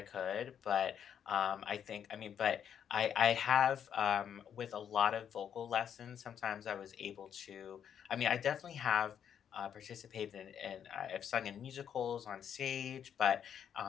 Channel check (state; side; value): quieter; right; 8.6 dB